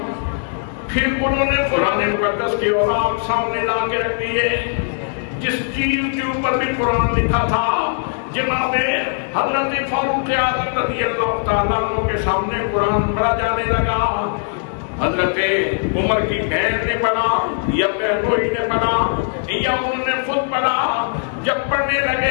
پھر انہوں نے قرآن مقدس کی اوراق سامنے لا کے رکھ دیے، جس چیز کے اوپر بھی قرآن لکھا تھا۔ جناب حضرت فاروق اعظم رضی اللہ تعالیٰ عنہ کے سامنے قرآن پڑھا جانے لگا۔ حضرت عمر کی بہن نے پڑھا یا بہنوئی نے پڑھا یا انہوں نے خود پڑھا، جب پڑھنے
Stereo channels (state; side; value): silent; right; digital silence